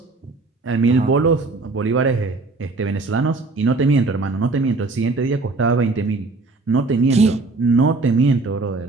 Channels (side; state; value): left; quieter; 3.5 dB